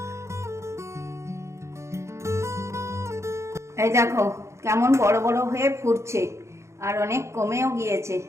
এই দেখো কেমন বড় বড় হয়ে ফুটছে আর অনেক কমেও গিয়েছে।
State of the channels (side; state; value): left; late; 0.14 ms